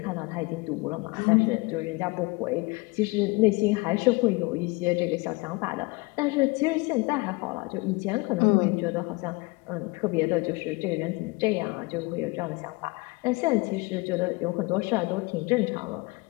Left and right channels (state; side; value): quieter; right; 25.7 dB